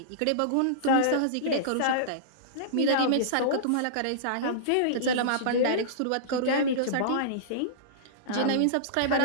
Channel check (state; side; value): different; both; correlation -0.03